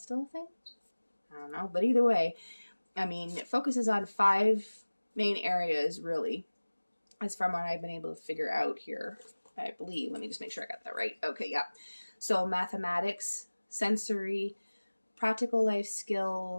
a thing? I don't know, but either way, I mean, it focuses on 5 main areas, really, as from what I've been able to figure out here, I believe. Let me just make sure I got that right. Okay, yeah. So mathematics, sensory, practical life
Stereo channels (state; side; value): inverted; both; correlation -1.00